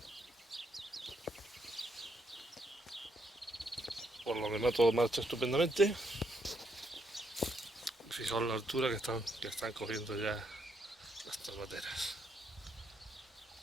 Por lo demás todo marcha estupendamente. Fijaos la altura que están cogiendo ya las tomateras.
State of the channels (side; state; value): both; normal; correlation 0.75